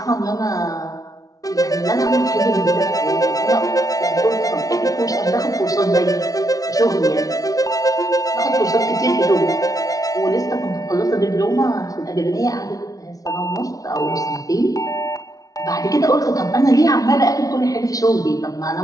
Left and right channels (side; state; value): right; late; 0.18 ms